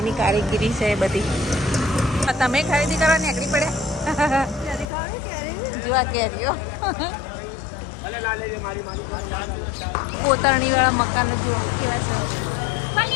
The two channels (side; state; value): right; drops out; at 4.9 s